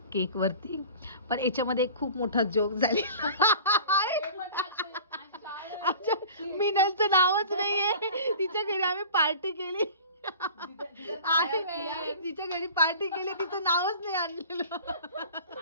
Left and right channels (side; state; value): both; inverted; correlation -0.41